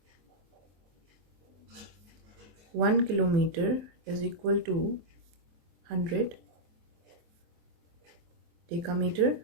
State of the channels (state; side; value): late; left; 23 ms